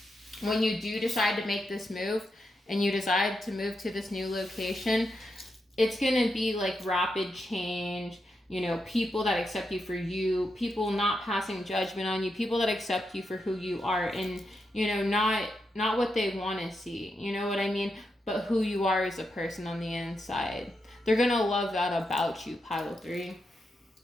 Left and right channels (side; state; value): both; normal; correlation 0.85